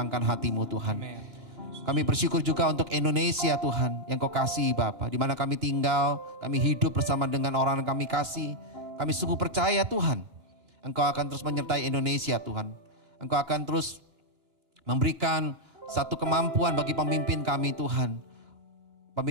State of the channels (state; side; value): late; left; 2.9 ms